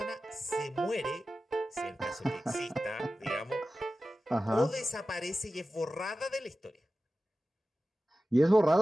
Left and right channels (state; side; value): normal; both; correlation 0.95